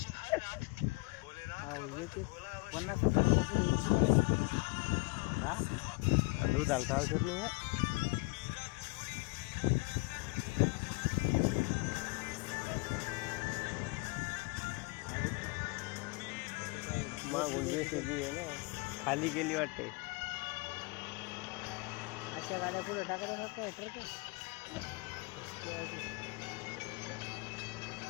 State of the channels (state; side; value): quieter; right; 26.3 dB